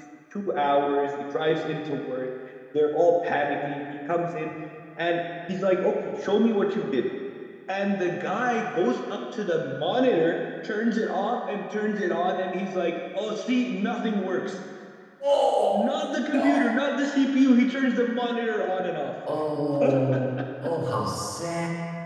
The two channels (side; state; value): both; identical; correlation 1.00